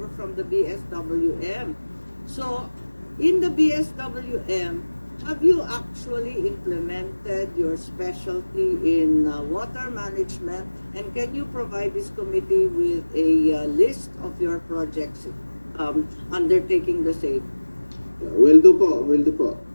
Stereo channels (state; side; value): inverted; both; correlation -1.00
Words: from the BSWM. So, in the BSWM, have you actually implemented your specialty in water management? And can you provide this committee with a list of your projects undertaking the same? will do po.